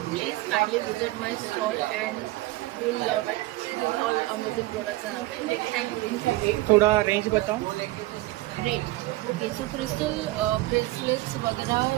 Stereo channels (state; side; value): quieter; left; 18.8 dB